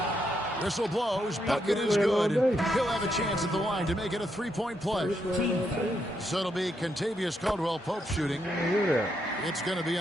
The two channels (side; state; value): both; normal; correlation 0.79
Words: Whistle blows. Bucket is good. He'll have a chance at the line to make it a 3-point play. So it'll be Kentavious Caldwell-Pope shooting. It's going to be